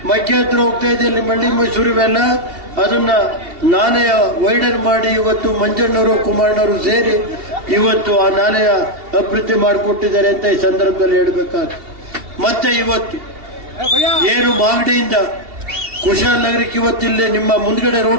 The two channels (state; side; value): late; left; 2.7 ms